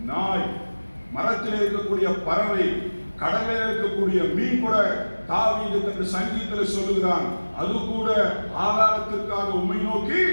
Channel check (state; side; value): inverted; both; correlation -1.00